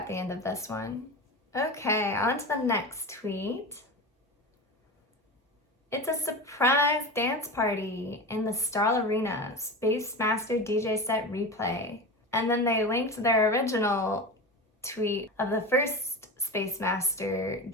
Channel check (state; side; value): normal; both; correlation 0.27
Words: the end of this one. Okay, on to the next tweet. It's a surprise dance party in the STARL Arena, Space Master DJ set replay. And then they linked their original tweet of the first Space Master